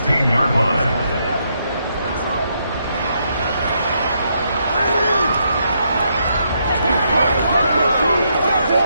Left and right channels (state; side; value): inverted; both; correlation -0.77